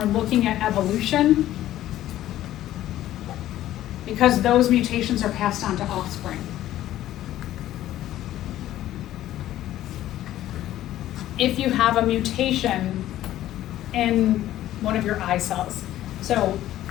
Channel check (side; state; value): right; quieter; 13.6 dB